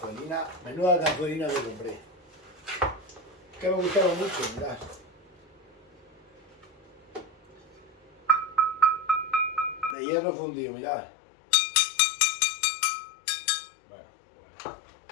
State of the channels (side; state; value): right; drops out; at 10.0 s